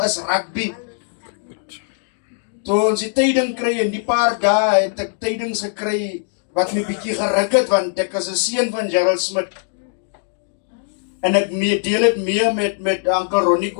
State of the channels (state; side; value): silent; right; digital silence